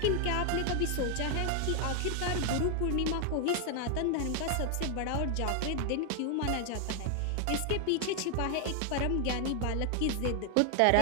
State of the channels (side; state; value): both; different; correlation 0.00